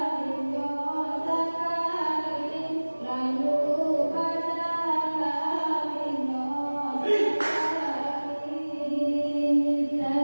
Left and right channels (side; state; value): both; inverted; correlation -1.00